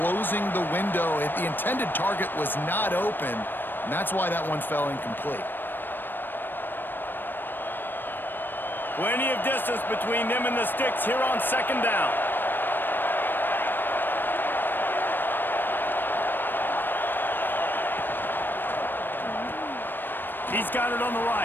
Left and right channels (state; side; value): late; right; 0.094 ms